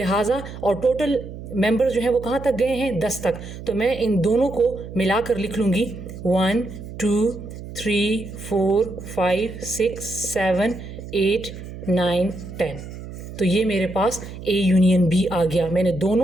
और टोटल मेंबर्स जो हैं वो कहाँ तक गए हैं, 10 तक। तो मैं इन दोनों को मिलाकर लिख लूँगी 1, 2, 3, 4, 5, 6, 7, 8, 9, 10। तो ये मेरे पास ए यूनियन बी आ गया। मैंने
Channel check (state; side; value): noise; right; hum, 12 dB below the sound